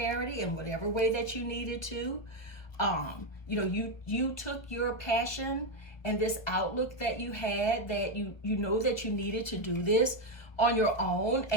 in whatever way that you needed to. You know, you took your passion and this outlook that you had, that you know that you needed to do this on your own,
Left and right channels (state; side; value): late; right; 1.2 ms